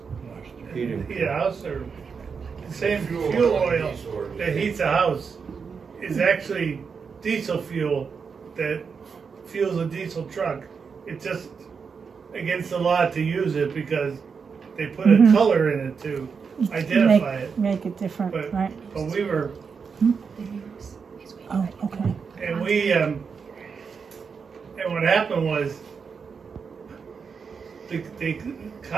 heat a house, or the same fuel oil that heats a house is actually diesel fuel that fuels a diesel truck. It's just against the law to use it because they put a color in it to identify it. Make it different, But right? we were, Oh, okay. and we and what happened was they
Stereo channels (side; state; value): left; quieter; 5.7 dB